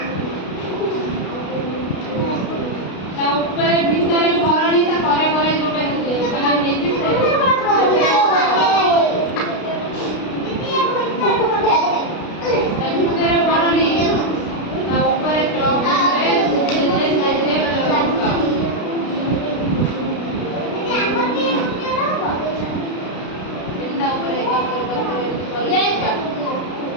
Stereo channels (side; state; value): right; late; 32 ms